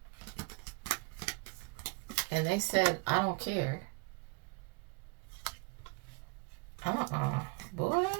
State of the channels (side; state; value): left; quieter; 31.0 dB